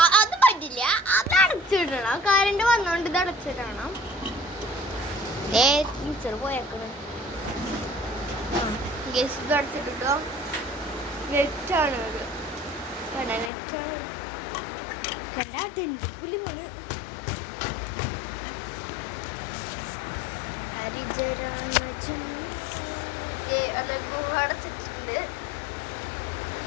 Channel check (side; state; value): right; drops out; at 13.5 s